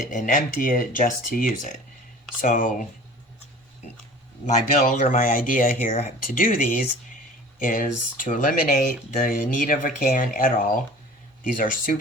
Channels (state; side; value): normal; both; correlation 0.43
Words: and empty it just to use it. So my build or my idea here to do these is to eliminate the need of a can at all. These are